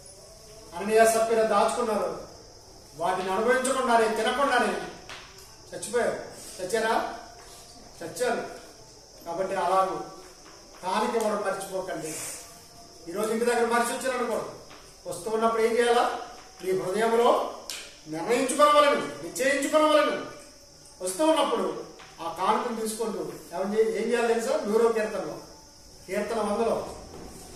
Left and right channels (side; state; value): both; identical; correlation 1.00